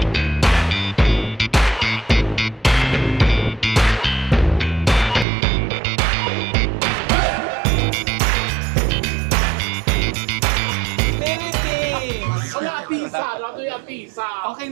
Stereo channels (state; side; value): drops out; left; at 5.2 s